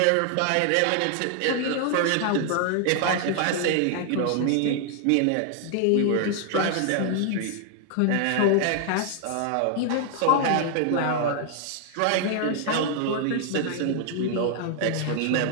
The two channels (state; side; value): different; both; correlation 0.00